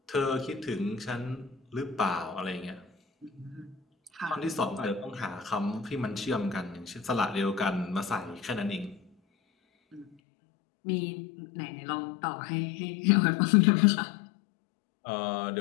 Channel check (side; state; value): right; drops out; at 10.1 s